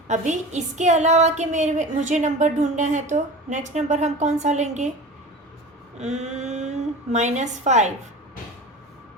अभी इसके अलावा के मुझे नंबर ढूंढना है तो नेक्स्ट नंबर हम कौन सा लेंगे, -5,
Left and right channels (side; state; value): both; normal; correlation 0.34